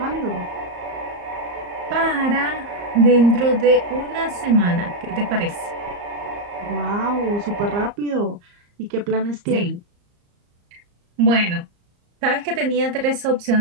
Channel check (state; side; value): late; left; 34 ms